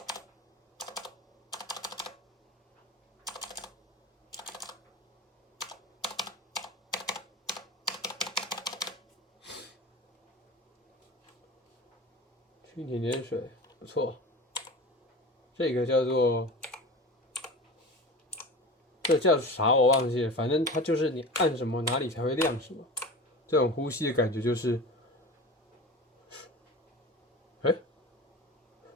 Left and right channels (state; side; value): normal; both; correlation 0.33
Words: 蜻蜓点水不错，这个叫做这叫啥我忘记了，反正它就是你按什么哪里才会亮什么。这种呼吸的感觉就是，哎，